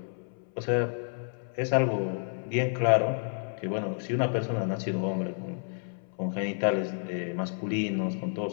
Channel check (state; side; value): silent; right; 58 dB below the other